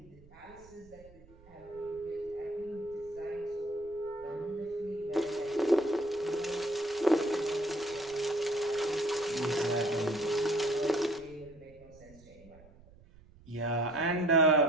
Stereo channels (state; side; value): noise; right; rumble, 24 dB below the sound